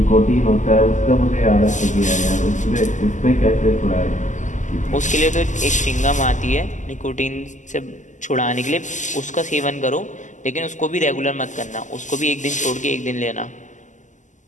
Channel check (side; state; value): right; late; 0.36 ms